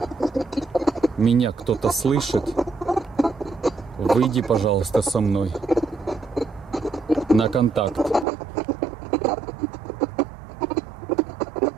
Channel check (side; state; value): left; drops out; at 8.2 s